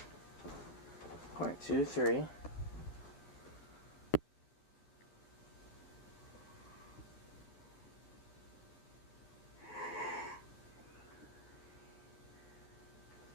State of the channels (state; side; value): late; right; 11 ms